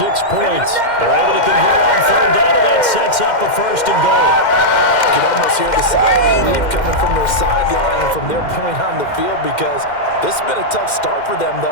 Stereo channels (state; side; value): late; right; 2.1 ms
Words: points. They're able to convert on 3rd down, and that sets up a 1st and goal. You can almost hear the sigh of relief coming from their sideline and from their point on the field because this has been a tough start for them